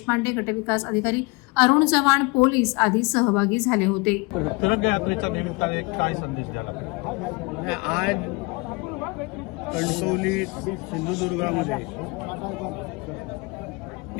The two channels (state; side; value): quieter; right; 27.6 dB